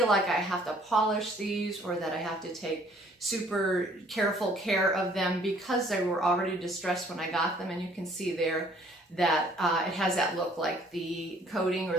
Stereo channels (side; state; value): both; normal; correlation 0.59